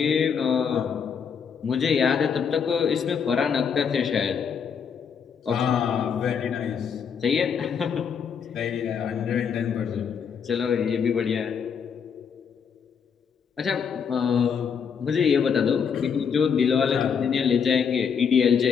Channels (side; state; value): right; quieter; 6.8 dB